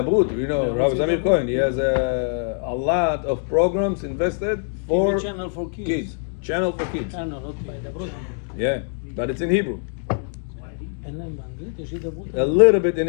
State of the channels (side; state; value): right; silent; digital silence